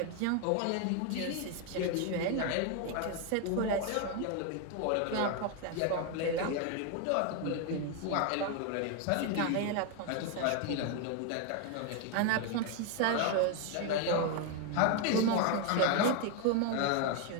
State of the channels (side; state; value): both; different; correlation 0.01